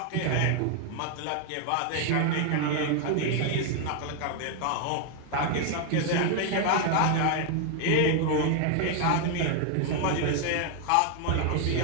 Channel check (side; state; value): both; different; correlation 0.00